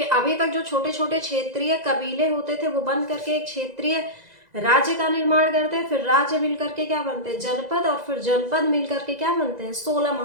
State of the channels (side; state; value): left; late; 2.0 ms